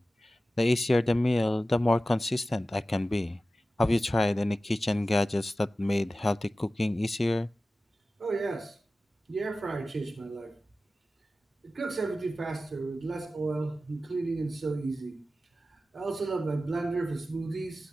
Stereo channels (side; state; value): both; normal; correlation 0.95